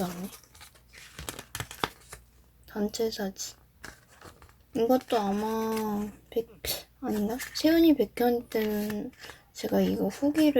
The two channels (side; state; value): both; identical; correlation 1.00